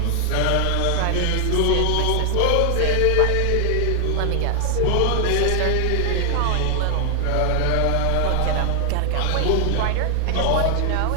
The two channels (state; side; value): different; both; correlation 0.00